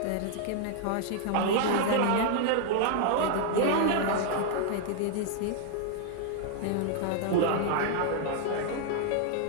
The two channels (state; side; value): different; both; correlation 0.00